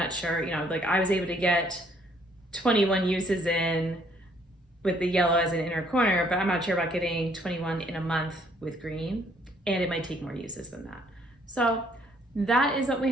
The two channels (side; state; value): both; normal; correlation 0.65